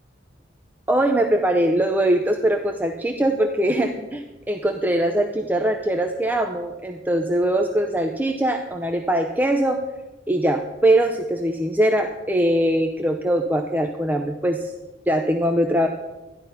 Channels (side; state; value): both; normal; correlation 0.72